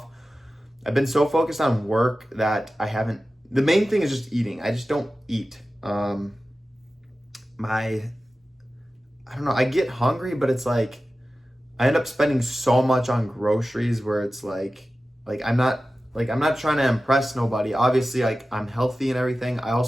I've been so focused on work that I haven't. The main thing is just eating. I just don't eat. I don't know. I get hungry, but it's like I end up spending so much on groceries where it's like I'm not trying to impress nobody. Obviously, like, I'm healthy and everything. I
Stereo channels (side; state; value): both; normal; correlation 0.95